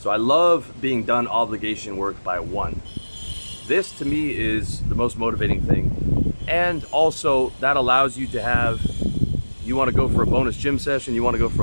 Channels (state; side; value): inverted; both; correlation -1.00